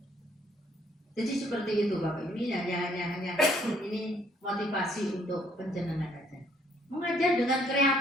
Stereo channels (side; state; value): both; normal; correlation 0.65